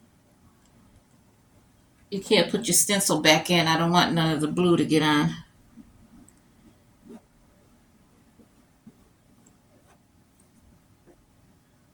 stencil back in. I don't want none of the blue to get on.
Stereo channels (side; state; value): both; identical; correlation 1.00